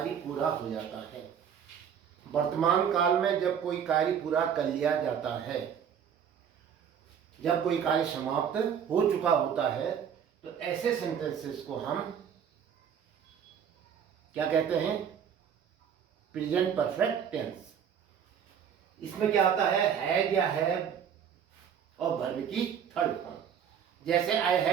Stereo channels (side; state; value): left; quieter; 8.0 dB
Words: पूरा हो जाता है, वर्तमान काल में जब कोई कार्य पूरा कर लिया जाता है, जब कोई कार्य समाप्त हो चुका होता है, तो ऐसे सेंटेंसेस को हम क्या कहते हैं? Present perfect tense. इसमें क्या आता है? हैज या हैव और वर्ब की थर्ड फॉर्म। जैसे I